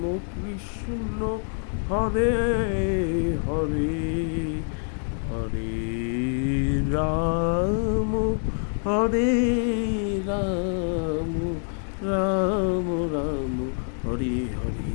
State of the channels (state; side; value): silent; right; 59 dB below the other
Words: কৃষ্ণ হরে হরে হরে রাম হরে রাম রাম রাম হরে হরে।